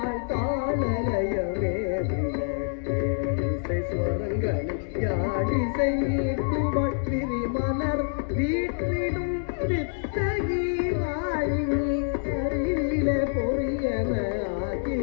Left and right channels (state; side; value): silent; right; digital silence